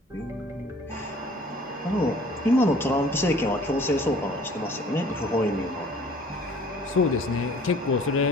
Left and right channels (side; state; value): both; normal; correlation 0.52